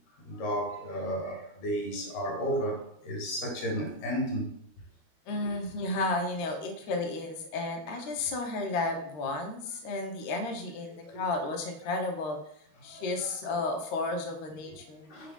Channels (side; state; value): right; late; 13 ms